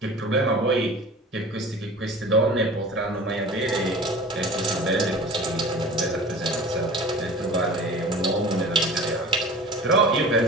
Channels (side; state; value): both; normal; correlation 0.39